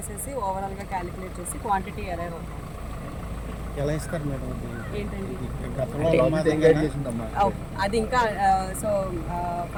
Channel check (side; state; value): both; identical; correlation 1.00